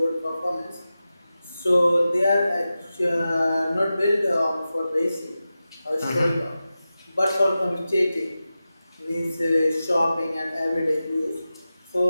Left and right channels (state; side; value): inverted; both; correlation -0.93